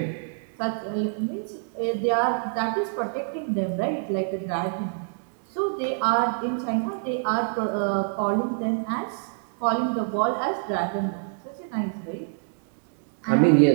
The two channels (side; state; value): left; silent; digital silence